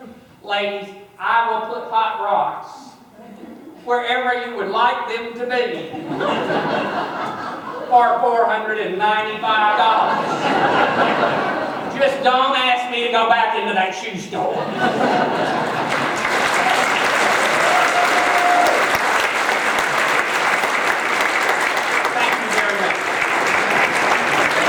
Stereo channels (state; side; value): identical; both; correlation 1.00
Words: Ladies, I will put hot rocks wherever you would like them to be for $495. Just don't ask me to go back into that shoe store.